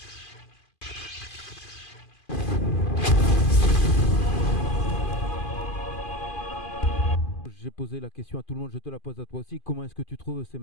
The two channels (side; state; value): right; late; 2.5 ms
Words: posé la question à tout le monde, je te la pose à toi aussi. Comment est-ce que tu trouves ces